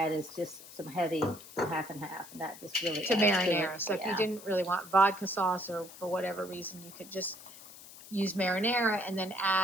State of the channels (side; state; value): left; noise; hiss, 17 dB below the sound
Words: is just some heavy half and half, and that just really To adds marinara. it. So if Yeah. you didn't really want vodka sauce or for whatever reason, you could just use marinara and then